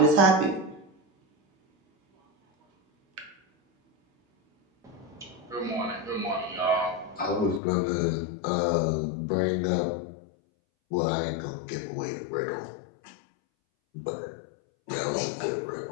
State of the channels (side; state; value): right; drops out; at 7.6 s